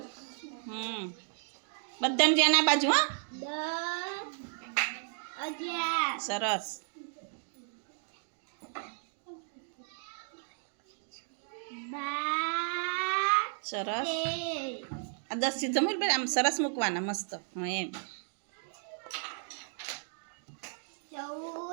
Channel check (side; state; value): left; silent; 55 dB below the other